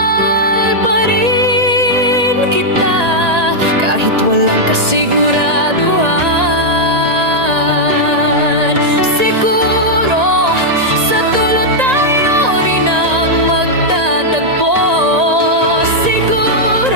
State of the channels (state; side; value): late; left; 1.8 ms